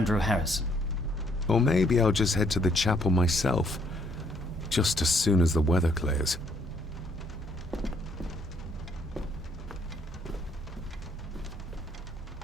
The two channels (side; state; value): both; normal; correlation 0.68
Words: Harrison. Or maybe I'll just head to the chapel myself, just as soon as the weather clears.